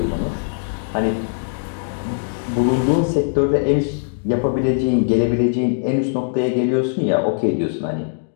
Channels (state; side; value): silent; right; digital silence